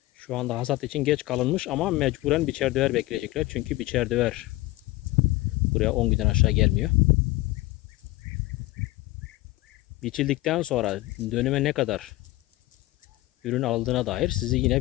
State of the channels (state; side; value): quieter; right; 18.9 dB